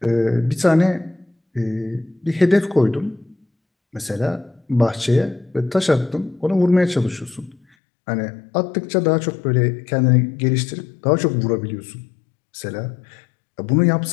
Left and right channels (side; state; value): right; drops out; at 7.6 s